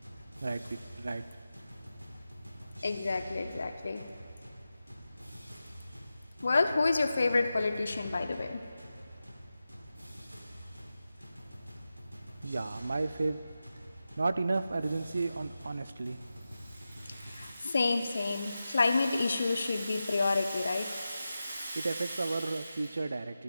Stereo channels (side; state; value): both; inverted; correlation -0.93